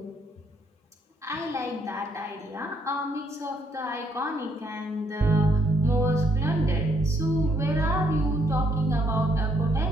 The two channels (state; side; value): normal; both; correlation 0.71